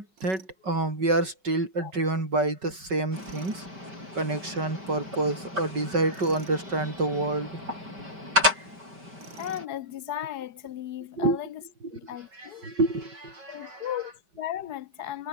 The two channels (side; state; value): left; late; 5.1 ms